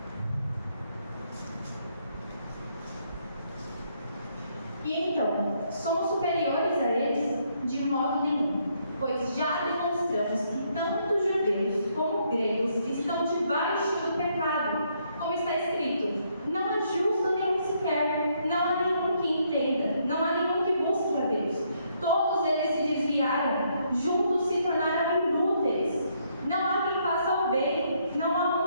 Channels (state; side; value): inverted; both; correlation -0.72